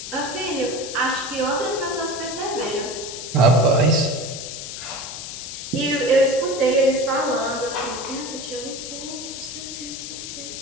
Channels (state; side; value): noise; left; hiss, 8 dB below the sound